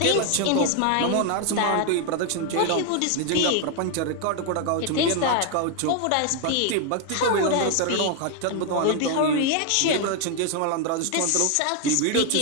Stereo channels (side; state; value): both; different; correlation 0.00